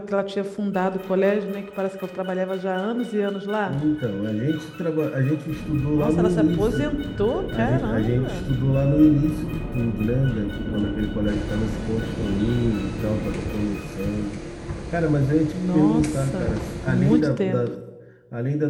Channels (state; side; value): identical; both; correlation 1.00